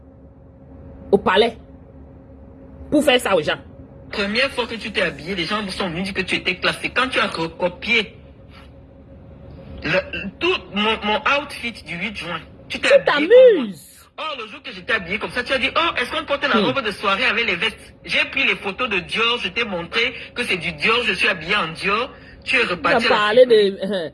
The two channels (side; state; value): both; identical; correlation 1.00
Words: au palais. Pour faire ça aux gens. Première fois que tu t'es habillé, les gens sont venus dire que tu étais classé. Quand tu as recopié tout mon outfit du 8 juin, tu t'es habillé. Oh, le jour que j'étais habillé comme ça, tu as dit, oh, est-ce qu'on porte la robe de soirée avec les vestes? J'ai pris les photos de Dior, je t'ai montré que c'est du Dior, je suis habillé en Dior. Tu es reparti. Tu as parlé de...